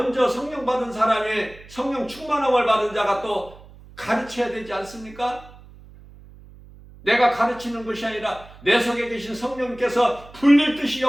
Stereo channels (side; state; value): right; noise; hum, 21 dB below the sound